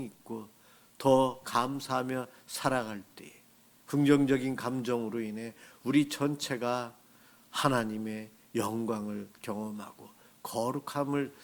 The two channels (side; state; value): both; identical; correlation 1.00